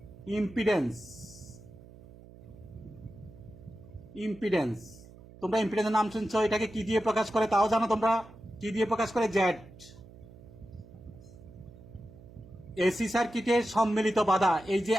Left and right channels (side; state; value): right; noise; hum, 20 dB below the sound